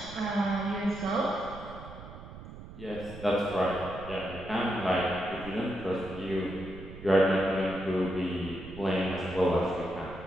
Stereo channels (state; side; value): noise; right; rumble, 14 dB below the sound